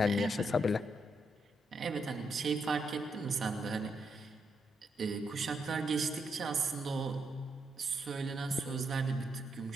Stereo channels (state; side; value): normal; both; correlation 0.79